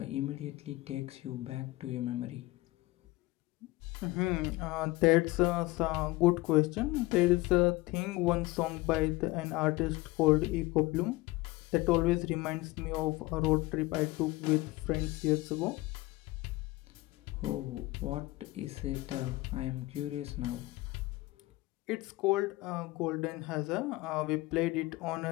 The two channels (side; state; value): right; quieter; 20.3 dB